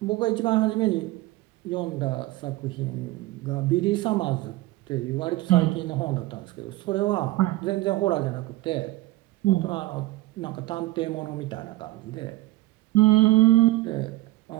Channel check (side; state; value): left; quieter; 18.0 dB